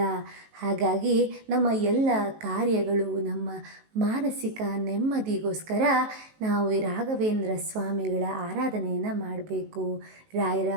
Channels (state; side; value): late; left; 19 ms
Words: ಹಾಗಾಗಿ ನಮ್ಮ ಎಲ್ಲ ಕಾರ್ಯಗಳು, ನಮ್ಮ ಮಾನಸಿಕ ನೆಮ್ಮದಿಗೋಸ್ಕರ ನಾವು ಈ ರಾಘವೇಂದ್ರ ಸ್ವಾಮಿಗಳ ಆರಾಧನೆಯನ್ನು ಮಾಡಬೇಕು. ರಾಯರ